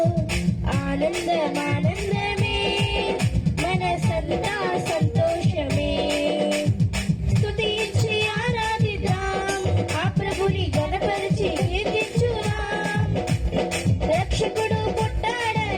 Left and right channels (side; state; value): both; identical; correlation 1.00